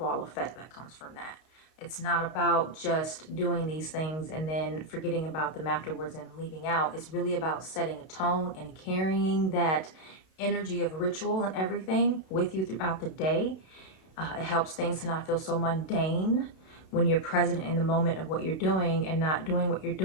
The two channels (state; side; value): late; right; 32 ms